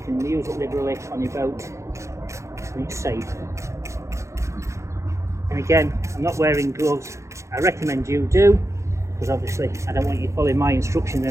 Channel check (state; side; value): late; left; 0.14 ms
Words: can use it liberally on your boat and it's safe. And again, I'm not wearing gloves. I recommend you do, because obviously I don't want you following my instructions